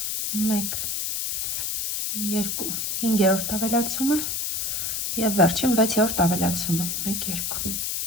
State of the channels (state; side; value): noise; left; hiss, 1 dB below the sound